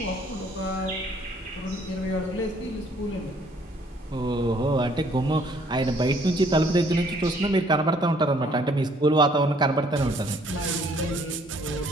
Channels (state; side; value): normal; both; correlation 0.62